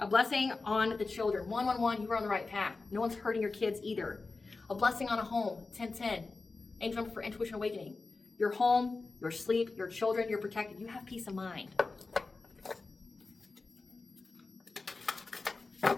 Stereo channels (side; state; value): right; quieter; 3.8 dB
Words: blessing on the children. 111, you are on the right path. No one's hurting your kids either. A blessing on a home. 1010. Angel number for intuition awakening. Your home, your sleep, your children, you're protected. You have peace of mind.